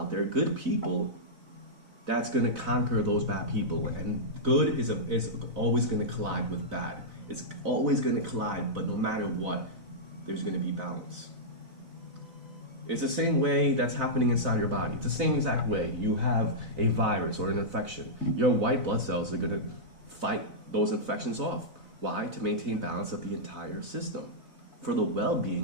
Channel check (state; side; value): late; left; 4.0 ms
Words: there, good people, that's going to conquer those bad people. And good is always going to collide with bad. It's always going to collide, but no matter what, there's going to be balance. It's the same way that's happening inside your body. It's the same exact way. You have a virus or an infection. Your white blood cells are going to fight those infections off. Why? To maintain balance of the entire system, for the